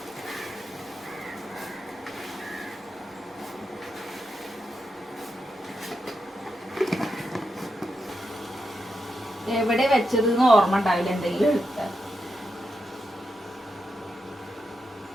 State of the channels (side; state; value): both; normal; correlation 0.86